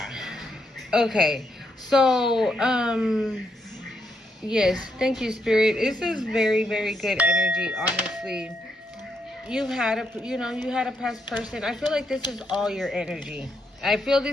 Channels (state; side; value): normal; both; correlation 0.78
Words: Okay. So, yes, thank you, Spirit. This is very, very good energy, honestly. You had a past person. I feel like this is all your energy. I feel